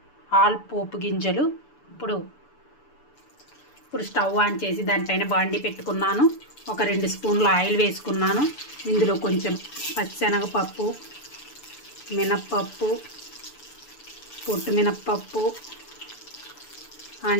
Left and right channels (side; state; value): right; late; 6.9 ms